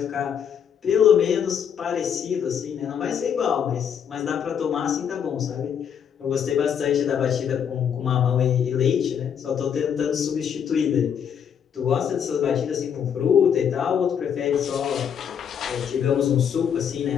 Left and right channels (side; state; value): right; quieter; 8.0 dB